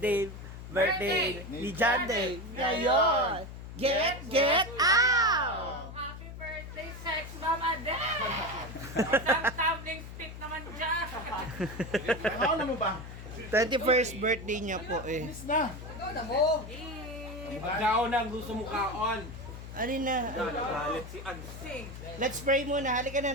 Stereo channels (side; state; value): left; noise; hum, 11 dB below the sound